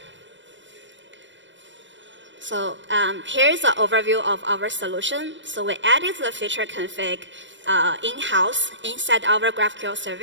So here's an overview of our solution. So we added the feature config in-house inside our GraphQL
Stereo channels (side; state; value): left; late; 0.54 ms